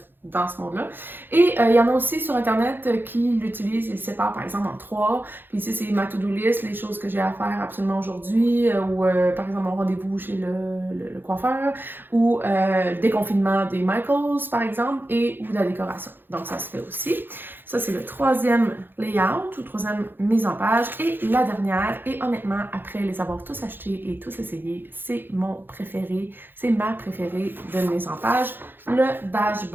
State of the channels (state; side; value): late; left; 0.098 ms